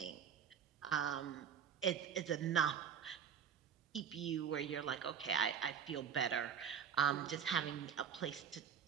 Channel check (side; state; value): left; quieter; 7.9 dB